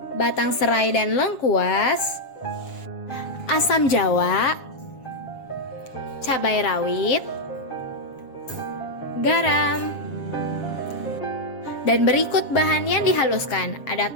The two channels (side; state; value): right; late; 7.4 ms